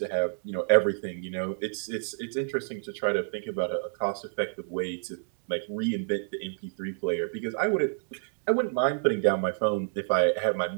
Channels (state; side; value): silent; left; digital silence